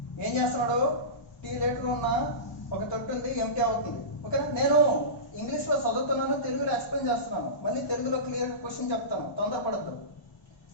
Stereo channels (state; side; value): late; right; 1.3 ms